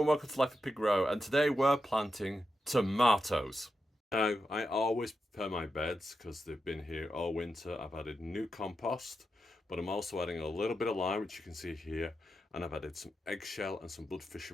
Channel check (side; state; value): both; normal; correlation 0.87